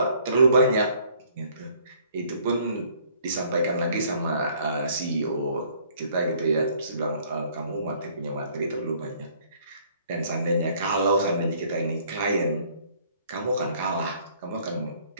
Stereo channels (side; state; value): both; inverted; correlation -0.60